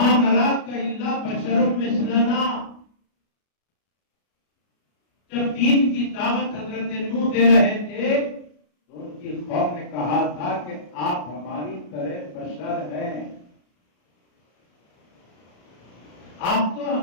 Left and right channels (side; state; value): right; late; 33 ms